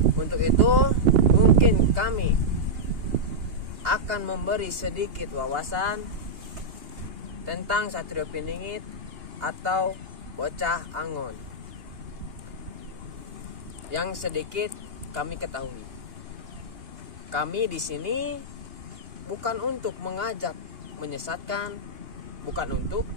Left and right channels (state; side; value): late; left; 2.8 ms